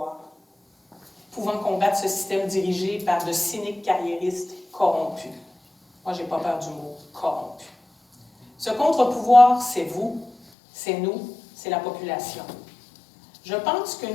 pouvant combattre ce système dirigé par de cyniques carriéristes corrompus. Moi, j'ai pas peur du mot « corrompu ». Ce contre-pouvoir, c'est vous, c'est nous, c'est la population. Je pense que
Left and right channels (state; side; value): drops out; right; at 10.4 s